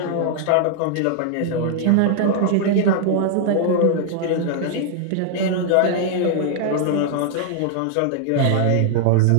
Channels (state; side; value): different; both; correlation 0.00